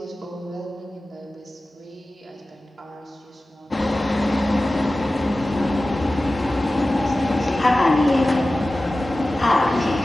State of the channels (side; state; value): both; normal; correlation 0.96